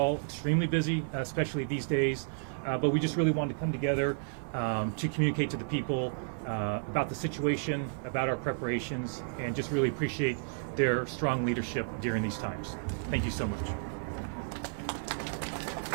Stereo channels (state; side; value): silent; left; digital silence